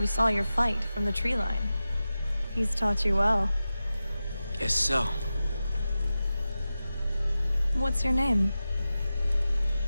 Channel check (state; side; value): inverted; both; correlation -0.94